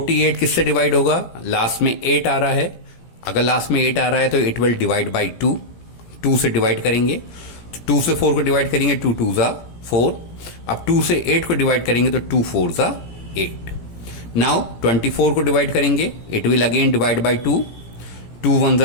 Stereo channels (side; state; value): right; late; 17 ms